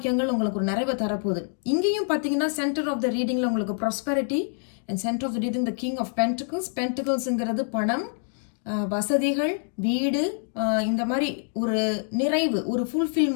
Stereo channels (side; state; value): right; silent; 61 dB below the other